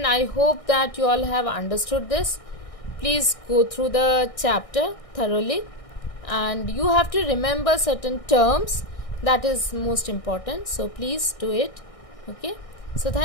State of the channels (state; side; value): late; right; 1.6 ms